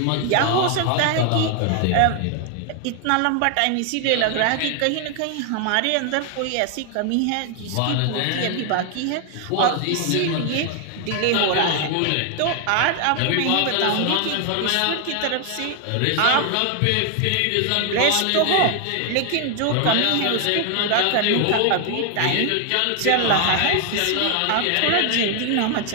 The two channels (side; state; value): both; different; correlation 0.00